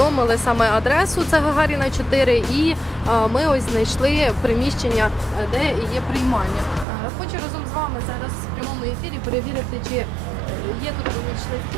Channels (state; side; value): drops out; left; at 6.9 s